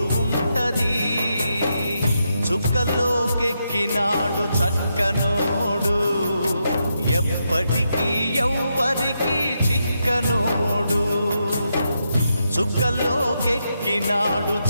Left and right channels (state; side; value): inverted; both; correlation -0.83